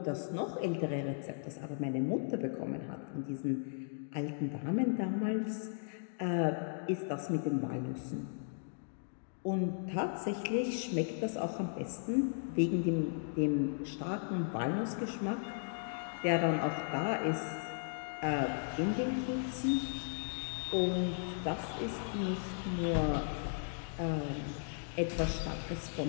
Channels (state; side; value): silent; right; digital silence